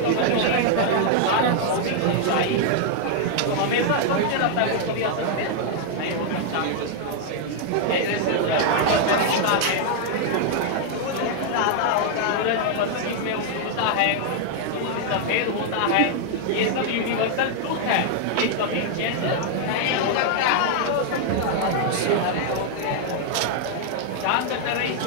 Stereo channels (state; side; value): different; both; correlation 0.00